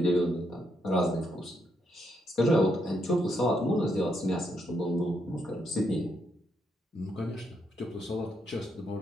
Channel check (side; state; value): both; normal; correlation 0.78